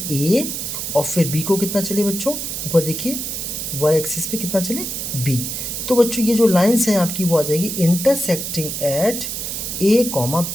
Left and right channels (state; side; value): noise; right; hiss, 4 dB below the sound